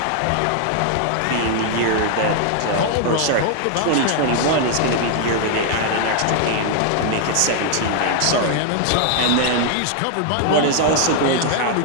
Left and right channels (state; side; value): different; both; correlation 0.00